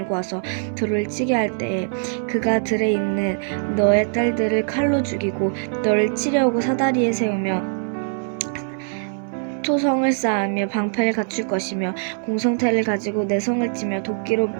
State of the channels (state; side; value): silent; left; digital silence